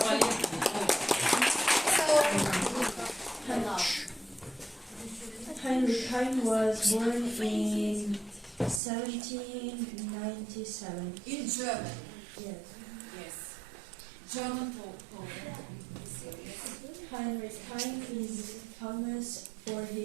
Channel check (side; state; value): left; drops out; at 8.8 s